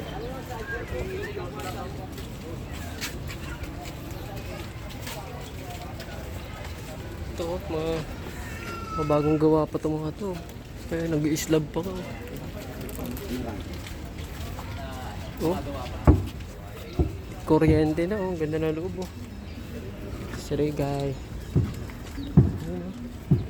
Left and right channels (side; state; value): both; identical; correlation 1.00